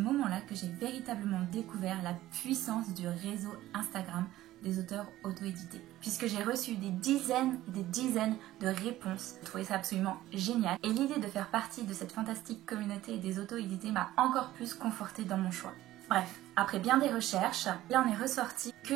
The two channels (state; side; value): quieter; left; 15.1 dB